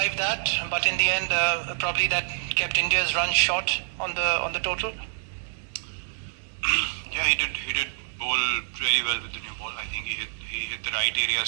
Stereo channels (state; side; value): silent; left; 60 dB below the other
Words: that, but in the end probably that kept India's run short on the total? Yeah, he did bowl really well with the new ball. I think he hit the right